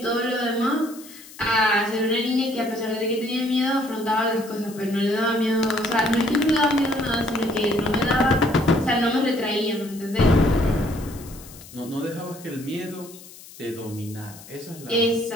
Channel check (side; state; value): left; noise; hiss, 19 dB below the sound